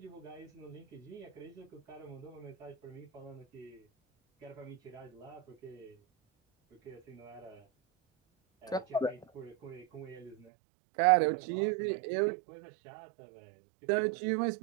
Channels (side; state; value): left; drops out; at 10.4 s